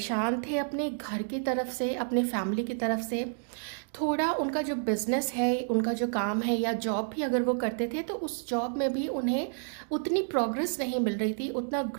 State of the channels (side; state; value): left; silent; digital silence